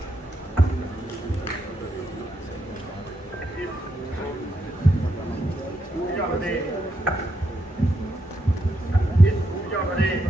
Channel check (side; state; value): both; normal; correlation 0.81